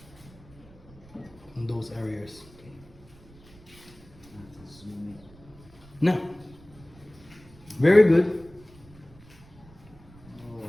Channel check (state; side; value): noise; right; rumble, 23 dB below the sound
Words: In those areas. No. Very good.